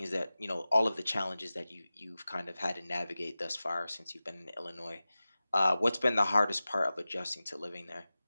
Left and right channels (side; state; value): both; inverted; correlation -0.96